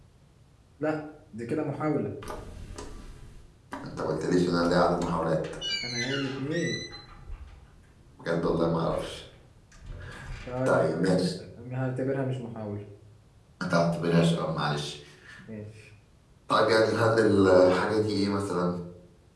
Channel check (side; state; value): both; identical; correlation 1.00